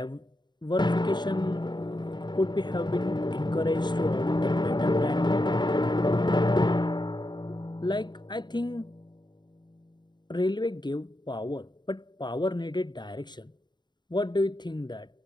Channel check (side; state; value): right; late; 0.21 ms